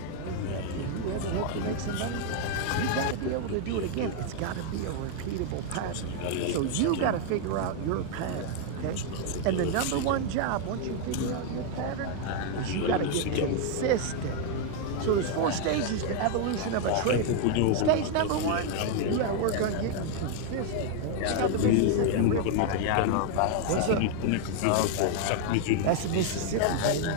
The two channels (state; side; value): different; both; correlation 0.00